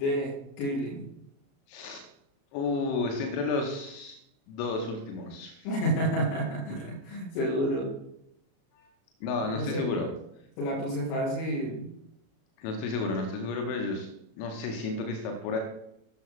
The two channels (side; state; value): right; late; 36 ms